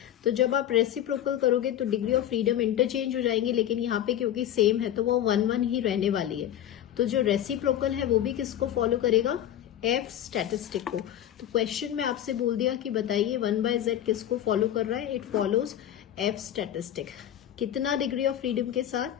तो जब आप रेसिप्रोकल करोगे तो डिग्री ऑफ फ्रीडम इंटरचेंज हो जाएंगी, लेकिन यहाँ पे क्योंकि सेम है तो वो 1-1 ही रहने वाली है। तो जो रेसिप्रोकल है वो भी किसको फॉलो करेगा? एफ स्टैटिस्टिक को। तो क्वेश्चन में आपसे बोल दिया कि बताइए 1/z किसको फॉलो कर रहा है? It follows F statistic. कितना डिग्री ऑफ फ्रीडम के साथ?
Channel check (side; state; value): right; quieter; 11.4 dB